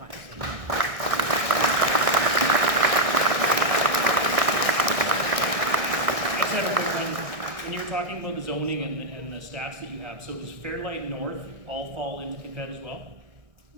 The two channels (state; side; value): late; left; 1.6 ms